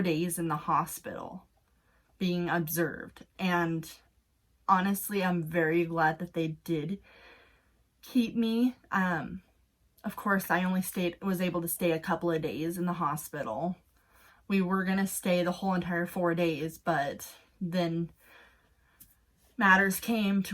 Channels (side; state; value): both; identical; correlation 1.00